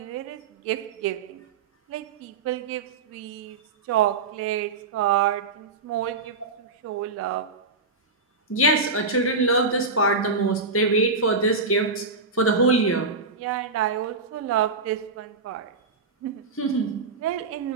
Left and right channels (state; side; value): quieter; left; 4.0 dB